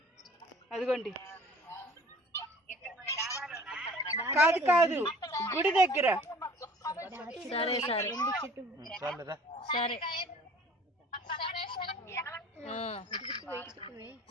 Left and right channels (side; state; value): both; normal; correlation 0.48